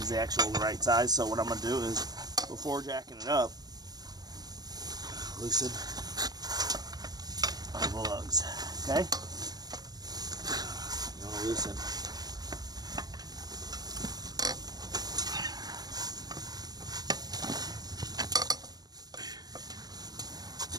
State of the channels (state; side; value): late; left; 0.19 ms